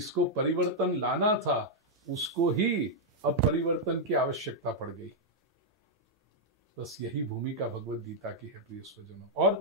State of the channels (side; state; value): both; normal; correlation -0.03